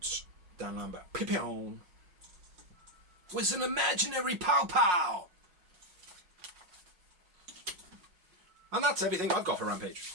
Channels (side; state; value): left; late; 5.5 ms